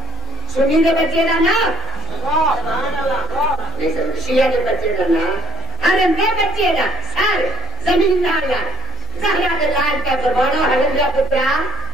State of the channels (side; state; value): both; normal; correlation 0.57